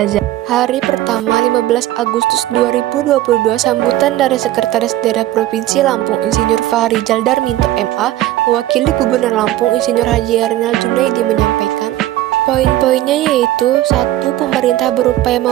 Hari pertama 15 Agustus 2022, sambutan dari Sekretaris Daerah Provinsi Lampung Insinyur Fahrizal Darminto MA mewakili Gubernur Lampung Insinyur Haji Rinal Junaidi menyampaikan poin-poinnya, yaitu 1. Pemerintah berupaya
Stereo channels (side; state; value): left; quieter; 14.6 dB